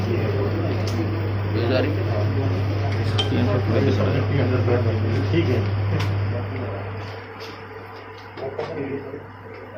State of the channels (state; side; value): identical; both; correlation 1.00